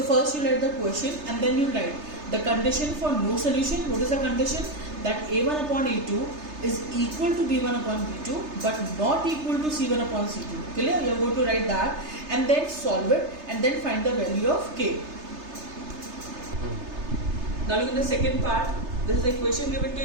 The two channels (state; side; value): late; left; 3.3 ms